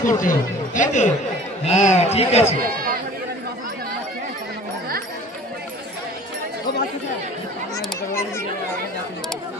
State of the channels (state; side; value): normal; both; correlation 0.45